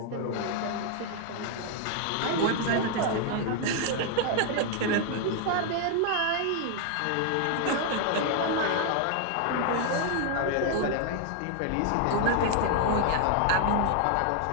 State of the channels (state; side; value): different; both; correlation 0.00